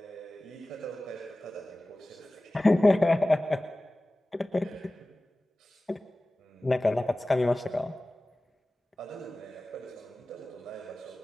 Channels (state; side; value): normal; both; correlation 0.97